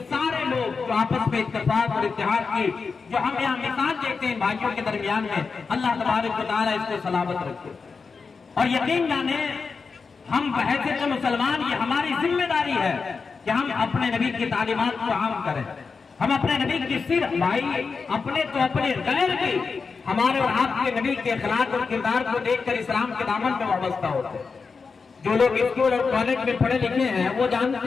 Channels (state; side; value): quieter; right; 4.9 dB